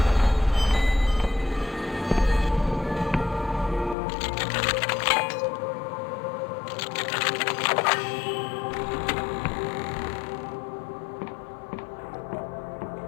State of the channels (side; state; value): right; drops out; at 4.0 s